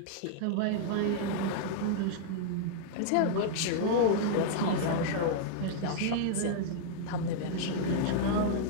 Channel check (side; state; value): both; different; correlation -0.01